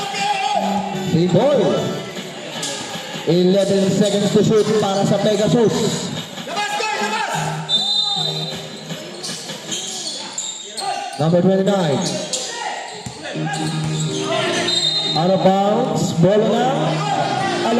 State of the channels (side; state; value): both; identical; correlation 1.00